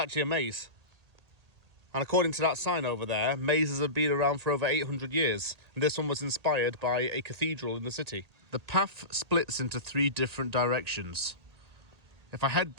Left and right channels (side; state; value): left; late; 1.8 ms